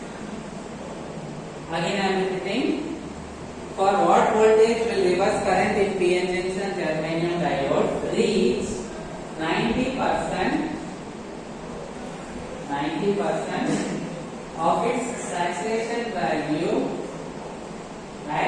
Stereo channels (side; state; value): both; identical; correlation 1.00